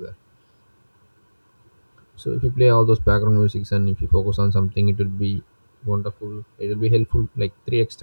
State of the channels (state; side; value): inverted; both; correlation -1.00